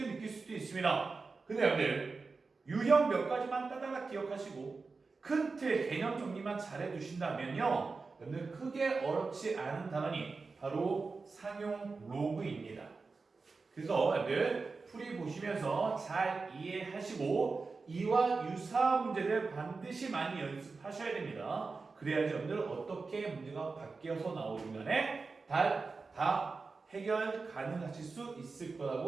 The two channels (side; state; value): left; quieter; 4.2 dB